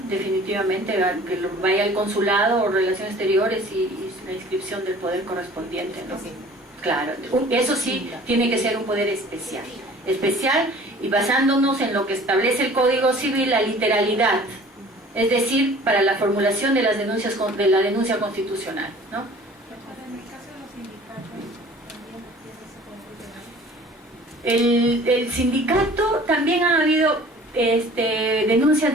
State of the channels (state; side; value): normal; both; correlation 0.48